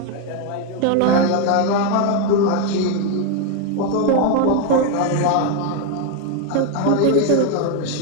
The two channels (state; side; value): different; both; correlation 0.01